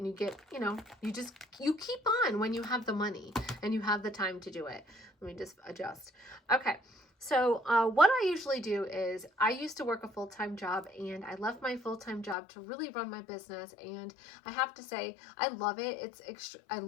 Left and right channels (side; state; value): right; drops out; at 12.4 s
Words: you get, you know, you keep on when you have the money and you have the time to do it. Let me just adjust. Okay. So what I usually do is, I used to work a full-time job, and I left my full-time job to really run my business. And I have to say, I love it. I